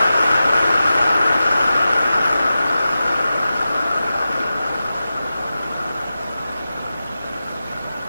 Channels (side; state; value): both; inverted; correlation -0.93